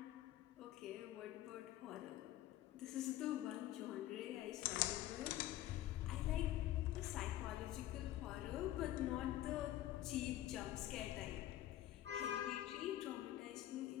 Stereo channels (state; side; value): quieter; right; 14.0 dB